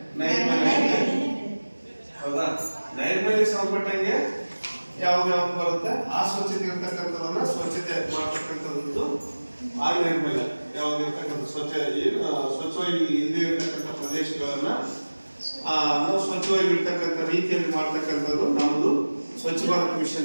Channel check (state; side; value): inverted; both; correlation -1.00